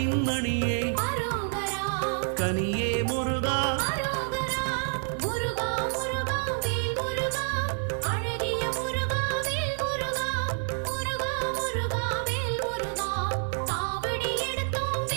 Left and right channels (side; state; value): left; silent; digital silence